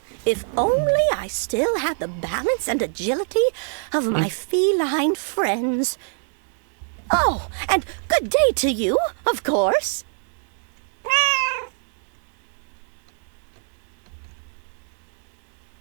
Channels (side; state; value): left; silent; 62 dB below the other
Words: If only I still had the balance and agility of my feline friends. Oh, and good day to you, of course.